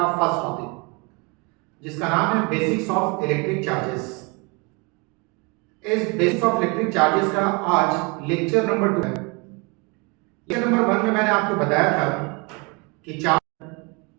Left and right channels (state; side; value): quieter; left; 29.9 dB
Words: फर्स्ट टॉपिक जिसका नाम है बेसिक्स ऑफ इलेक्ट्रिक चार्जेस। इस बेसिक्स ऑफ इलेक्ट्रिक चार्जेस का आज लेक्चर नंबर 2 है। लेक्चर नंबर 1 में मैंने आपको बताया था कि